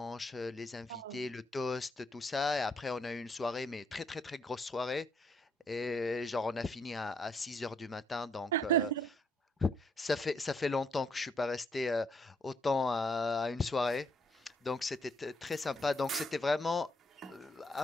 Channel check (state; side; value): normal; both; correlation 0.71